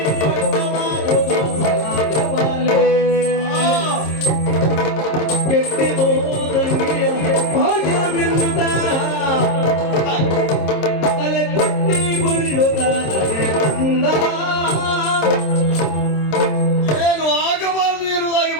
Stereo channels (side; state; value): right; late; 26 ms